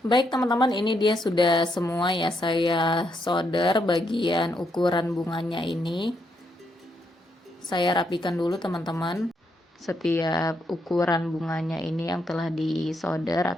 Baik teman-teman, ini dia sudah semua ya, saya solder bagian ukuran bunganya ini. Saya rapikan dulu teman-teman setiap ukuran bunganya ini yang telah disolder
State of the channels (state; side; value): normal; both; correlation 0.78